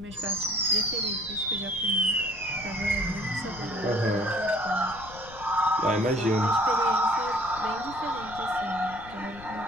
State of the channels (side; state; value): left; noise; rumble, 17 dB below the sound